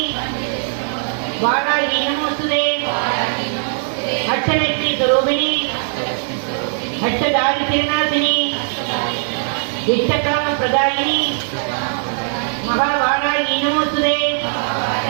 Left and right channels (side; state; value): left; silent; 67 dB below the other